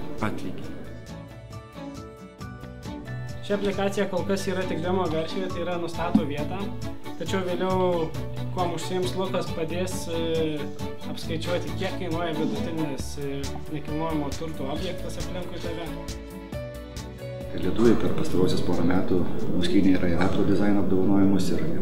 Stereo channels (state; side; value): identical; both; correlation 1.00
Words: atlygį. Ši aplikacija kol kas yra tik demo versijoje, tai yra nustato vietą, tačiau vėliau, kuo užsiims Lukas, padės apskaičiuoti, kiek kainuoja vidutinis nekilnojamo turto objektas aplinkui tave. Lietuviai per pastarosius porą metų nuskynė Ratro dizaino apdovanojimus ir